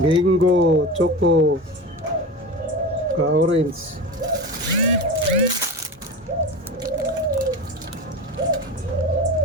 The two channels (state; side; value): normal; both; correlation 0.27